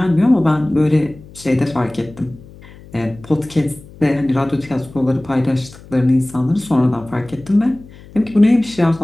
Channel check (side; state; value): left; noise; hum, 21 dB below the sound